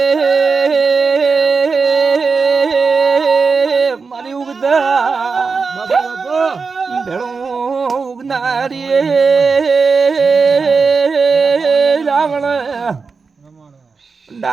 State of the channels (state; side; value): quieter; left; 4.8 dB